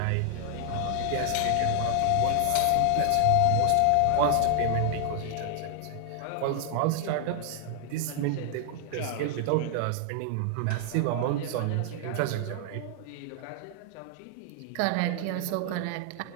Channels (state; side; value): different; both; correlation 0.00